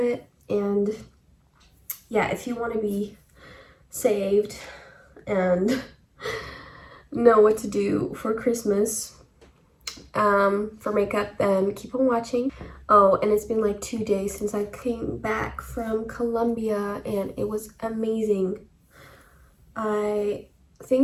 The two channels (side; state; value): both; identical; correlation 1.00